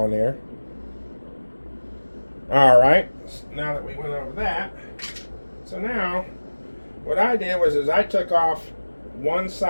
there. Alright, now that we went over that, so now what I did was I took off one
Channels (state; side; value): inverted; both; correlation -1.00